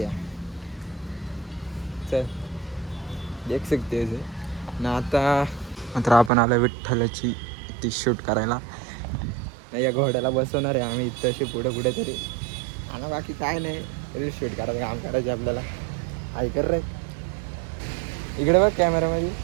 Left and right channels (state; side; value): drops out; left; at 6.3 s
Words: चल देख सकते ना. आता मात्र आपण आलो विठ्ठलाची ती शूट करायला. या घोड्याला बसवणार आहे आम्ही इथं अशी पुढे पुढे तरी. आणि बाकी काय नाही, रील शूट करायचं काम करायचे आपल्याला. ऐकर रे, इकडे बघ कॅमेरामध्ये.